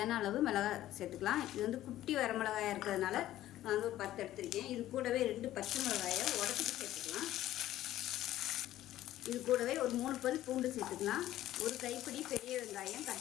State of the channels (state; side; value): quieter; right; 13.9 dB